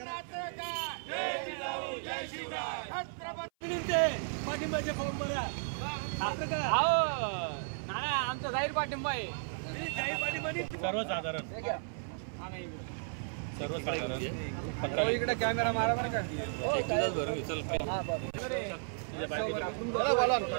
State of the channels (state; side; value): silent; left; 55 dB below the other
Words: जय जिजाऊ जय शिवराय. छत्रपतींचे पाठिंबाचे फॉर्म भरा. नाना आमचा जाहीर पाठिंबा आहे. जाहीर पाठिंबा सर्वसाधारण इकडे कॅमेरा मारा बरं का.